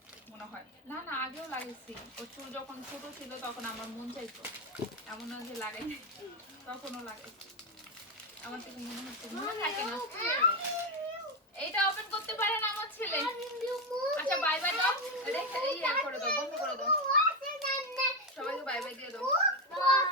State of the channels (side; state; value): both; normal; correlation 0.10